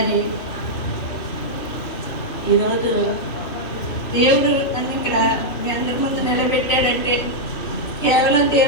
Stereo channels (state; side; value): late; right; 2.8 ms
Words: ఈరోజు దేవుడు నన్ను ఇక్కడ మీ అందరి ముందు నిలబెట్టాడంటే కేవలం